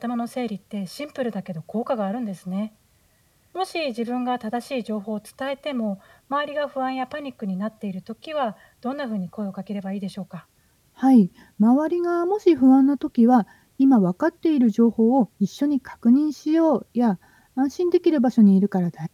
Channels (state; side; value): identical; both; correlation 1.00